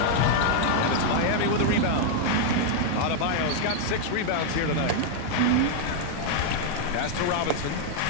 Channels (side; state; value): both; different; correlation 0.00